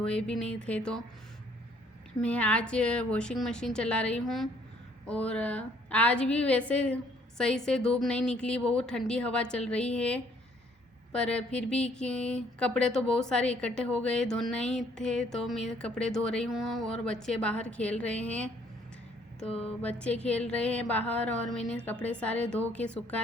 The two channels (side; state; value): both; normal; correlation 0.63